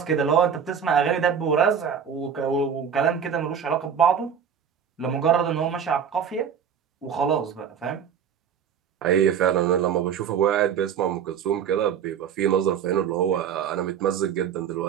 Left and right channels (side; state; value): left; quieter; 7.7 dB